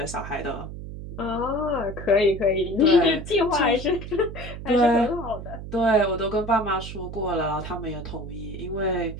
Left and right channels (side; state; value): right; noise; hum, 10 dB below the sound